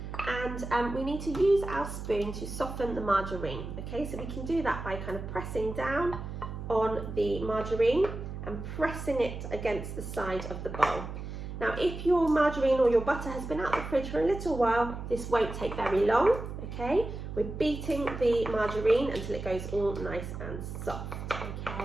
and we need to use our spoon to soften the margarine. Okay, so we can do that by kind of pressing down on the margarine and pressing it against the side of the bowl. Now, if your margarine or your butter has been out of the fridge for a little while, this won't take very long, okay? We're beating the margarine until it goes all nice and soft,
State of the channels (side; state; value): right; noise; hum, 8 dB below the sound